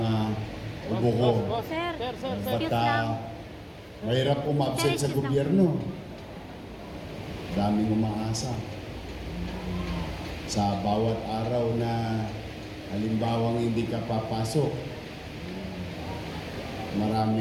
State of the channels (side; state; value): both; identical; correlation 1.00